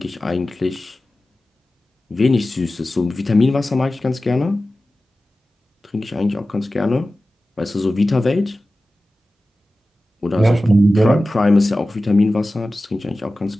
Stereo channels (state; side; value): normal; both; correlation 0.95